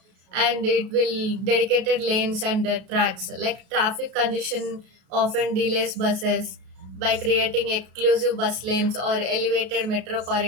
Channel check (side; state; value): left; late; 33 ms